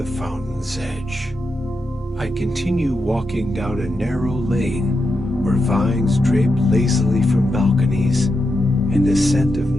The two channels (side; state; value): both; normal; correlation 0.86